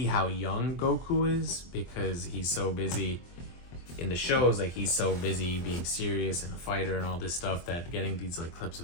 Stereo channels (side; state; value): right; late; 23 ms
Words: how young Goku is because he's so busy in the shows. Like he's so busy being serious and a fighter and all this stuff that getting these like clips